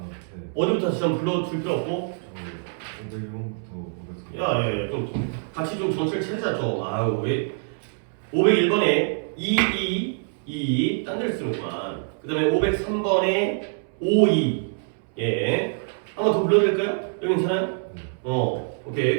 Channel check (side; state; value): left; silent; 62 dB below the other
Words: 네. 어디부터 다시 한번 불러줄 필요 없고. 저 501번부터 500. 야, 좀 같이 좀 정체를 찾자 좀. 아유, 왜 501번에 2, 딴 데를 쓰는구만. 그 다음에 503번에 5, 2. 예. 한번 더 불러드릴까요? 여기 괜찮아요?